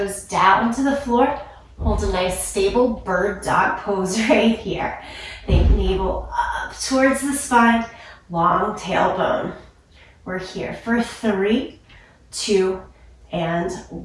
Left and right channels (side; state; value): both; identical; correlation 1.00